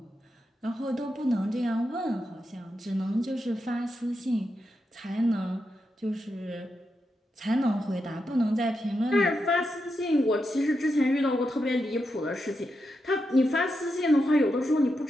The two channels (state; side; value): normal; both; correlation 0.86